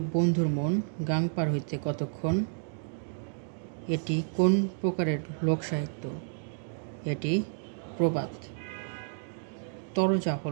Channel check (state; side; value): silent; left; digital silence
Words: বন্ধুর মন গাং পার হইতে কতক্ষণ এটি কোন প্রকারের লোকসাহিত্য? এটি প্রবাদ। তরজা